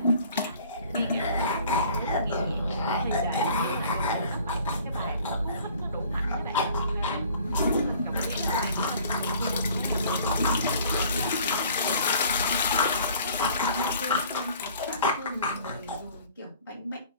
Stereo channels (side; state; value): both; inverted; correlation -0.52